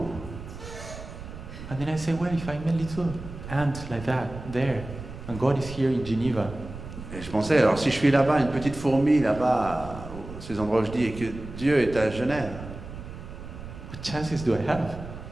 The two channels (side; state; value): right; noise; rumble, 12 dB below the sound